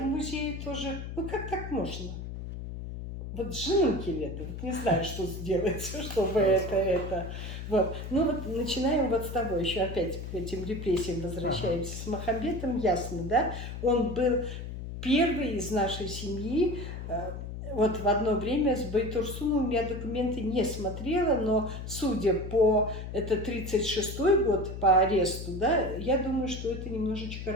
музее тоже, ну как так можно? Вот женунки лето, вот не знаю, что сделать, чтобы это. Вот. Ну вот начинаем вот с того, еще опять к этим репрессиям возвращаемся. С Махамбетом ясно, да? Он был первый из нашей семьи. Вот в одно время с Байтурсуновым я документы не смотрела, но судя по, это 36-й год по аресту, да, я думаю, что это немножечко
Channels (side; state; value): left; noise; hum, 8 dB below the sound